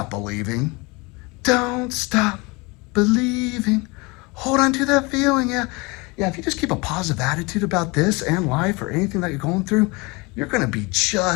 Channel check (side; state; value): right; quieter; 26.3 dB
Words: believing. Don't stop believing. Hold on to that feeling, yeah. Yeah, if you just keep a positive attitude about this and life or anything that you're going through, you're gonna be